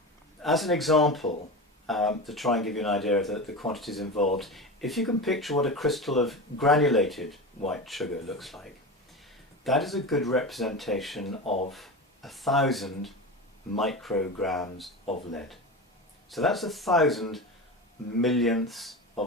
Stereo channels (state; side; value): normal; both; correlation 0.26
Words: As an example, to try and give you an idea of the quantities involved, if you can picture what a crystal of granulated white sugar looks like, that is a good representation of 1,000 micrograms of lead. So that's 1,000 millionths